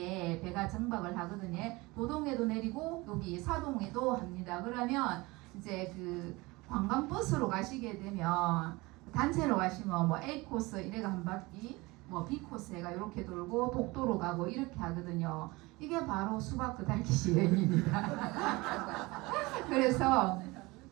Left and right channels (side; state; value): left; quieter; 22.8 dB